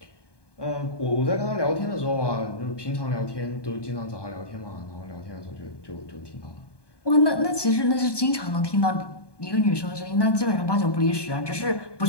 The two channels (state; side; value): late; right; 1.2 ms